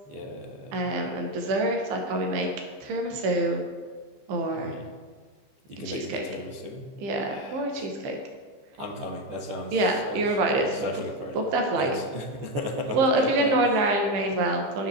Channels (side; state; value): left; late; 15 ms